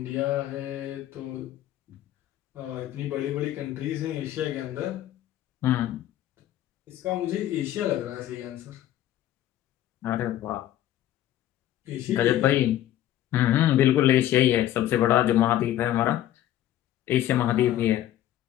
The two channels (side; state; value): right; quieter; 12.9 dB